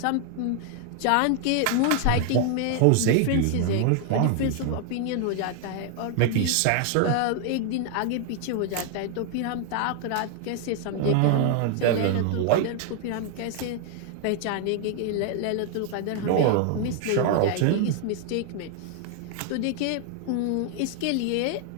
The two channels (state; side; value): different; both; correlation 0.00